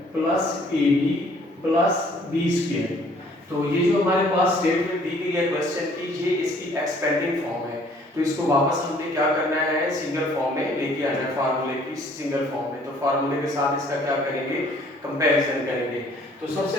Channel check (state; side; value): normal; both; correlation 0.59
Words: plus A B plus B square. तो ये जो हमारे पास स्टेटमेंट दी गई है क्वेश्चन की, ये इसकी एक्सपेंडिंग फॉर्म है। तो इसको वापस हमने क्या करना है, सिंगल फॉर्म में लेके आना है फार्मूले की सिंगल फॉर्म में। तो फार्मूले के साथ इसका क्या करेंगे, कंपैरिजन करेंगे। तो